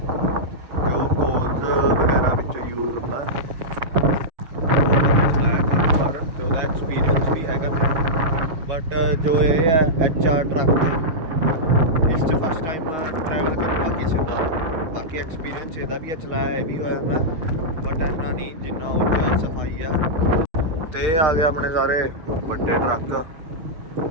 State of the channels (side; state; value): left; late; 6.2 ms